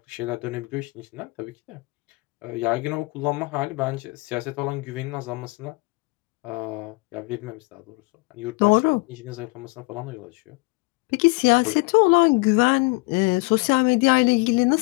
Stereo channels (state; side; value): quieter; right; 26.4 dB